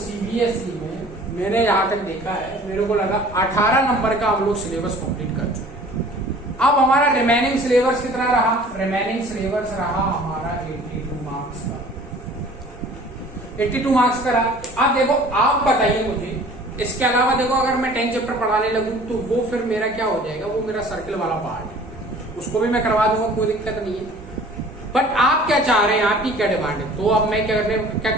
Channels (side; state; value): both; normal; correlation 0.48